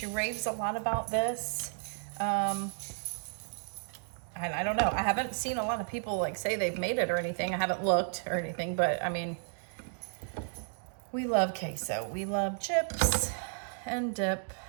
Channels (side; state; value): left; silent; digital silence